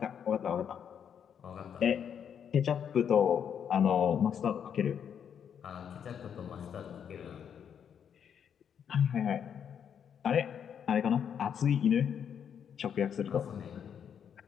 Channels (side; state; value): right; quieter; 8.1 dB